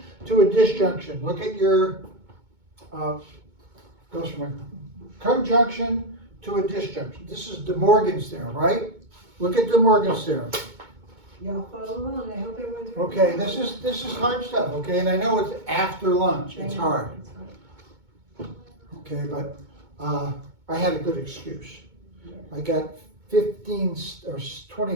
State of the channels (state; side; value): late; left; 2.2 ms